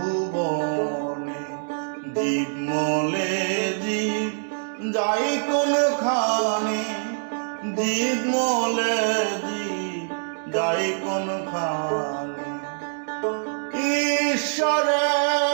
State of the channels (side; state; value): left; silent; digital silence